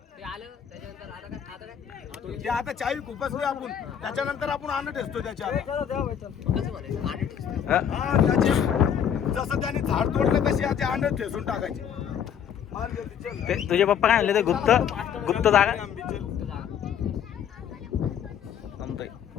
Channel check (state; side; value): quieter; right; 8.5 dB